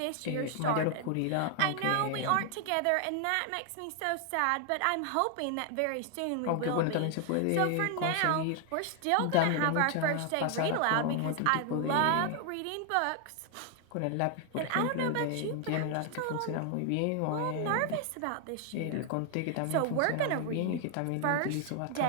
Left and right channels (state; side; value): different; both; correlation 0.00